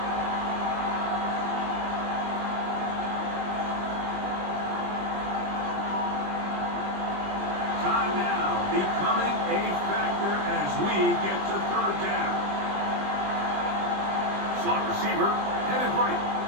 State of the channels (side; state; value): left; late; 20 ms